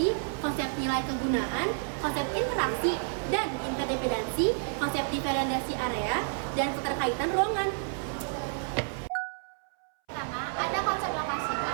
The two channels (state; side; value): silent; left; 58 dB below the other